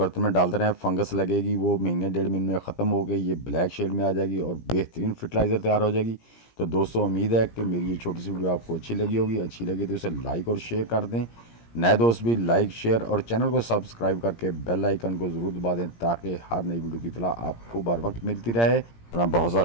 में डालते रहें। फंगस लगेगी, वो महीने 1.5 महीने में ख़त्म हो गई, ये ब्लैक शेड में आ जाएगी और बेहतरीन फर्टिलाइज़र तैयार हो जाएगी। तो दोस्तों, उम्मीद है कि मेरी ये छोटी सी वीडियो आपको अच्छी लगी होगी। अच्छी लगी तो इसे लाइक और शेयर कर दें। नए दोस्त भी लाइक शेयर और चैनल को सब्सक्राइब करके बेल आइकन को ज़रूर दबा दें, ताकि हर नई वीडियो की इत्तला आपको बर वक्त मिलती रहे। अपना बहुत सा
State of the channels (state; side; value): late; right; 17 ms